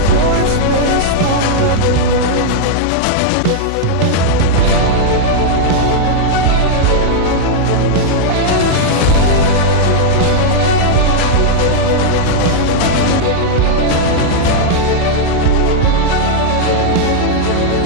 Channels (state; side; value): different; both; correlation -0.01